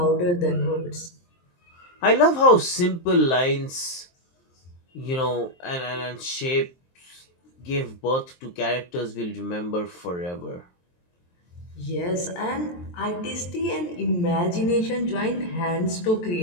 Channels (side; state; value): right; late; 23 ms